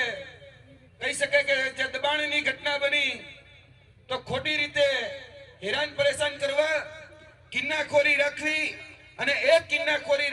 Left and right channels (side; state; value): both; identical; correlation 1.00